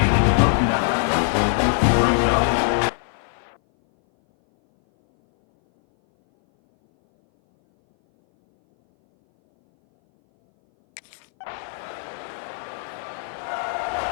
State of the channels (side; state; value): right; silent; 59 dB below the other